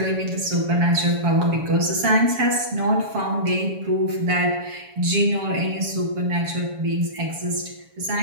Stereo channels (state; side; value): late; left; 7.1 ms